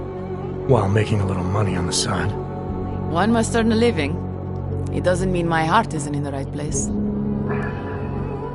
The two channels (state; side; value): identical; both; correlation 1.00